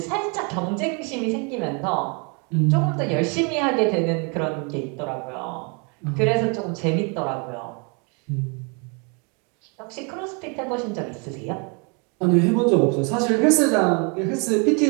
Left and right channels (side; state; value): left; quieter; 34.5 dB